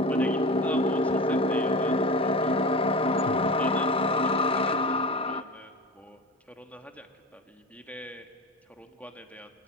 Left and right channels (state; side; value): normal; both; correlation 0.30